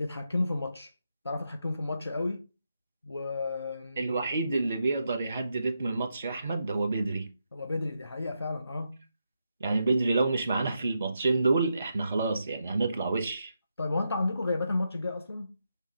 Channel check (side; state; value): both; inverted; correlation -0.84